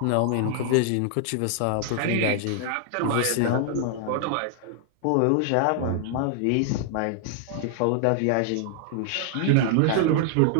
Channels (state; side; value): different; both; correlation 0.00